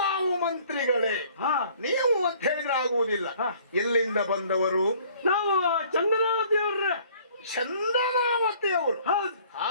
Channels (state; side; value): inverted; both; correlation -0.56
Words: ನಾವು ಮಂತ್ರಿಗಳೇ, ನೀವು ಅಂತ ಹೇಳಿದ್ರೆ ಆಗುವುದಿಲ್ಲ. ಎಲ್ಲಿಂದ ಬಂದವರು? ನಾವು ಚಂದನಾವತಿ ಅವ್ರ. ಚಂದನಾವತಿ ಅವರು?